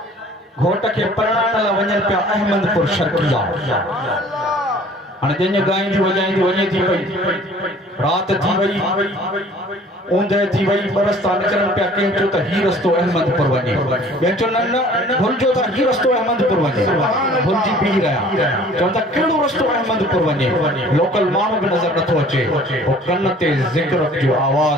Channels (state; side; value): normal; both; correlation 0.51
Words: घोट के परणाण ला वञनि पिया अहमदपुर शर्किया हाणे जंहिंजे ॻाईंदी वॼाईंदी वञे थी पई रात थी वई ऊंदहि थी वई बरस था निकिरनि पिया कंहिं चयो त ही रस्तो अहमदपुर वञे ॿियनि चयो न न भुलिजो त ही रस्तो अहमदपुर वञे भुलिजी बीह रहिया चवनि था कहिड़ो रस्तो अहमदपुर वञे लोकल माण्हू बि नज़र नथो अचे पोइ कन ते ज़िक्र जो